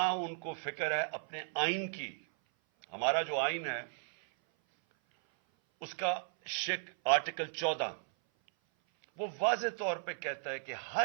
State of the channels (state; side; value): silent; left; 54 dB below the other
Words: ان کو فکر ہے اپنے آئین کی۔ ہمارا جو آئین ہے اس کا آرٹیکل 14 وہ واضح طور پہ کہتا ہے کہ